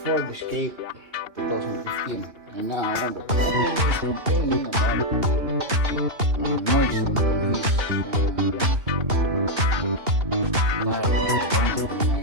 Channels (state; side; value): late; left; 3.0 ms